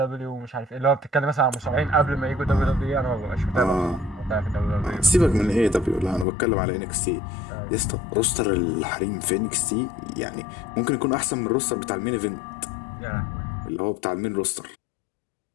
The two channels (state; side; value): drops out; right; at 6.2 s